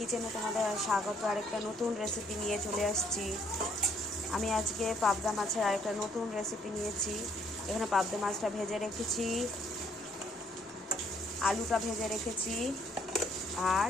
तुम्हारे स्वागत। आरेकटा नतून रेसिपि निये चले आसछि। आमी आजके पाबदा माछेर आरेकटा नतून रेसिपि नियेछि। एखाने पाबदा माछटा भेजे रेखेछि, आलूटा भेजे रेखेछि और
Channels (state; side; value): normal; both; correlation 0.66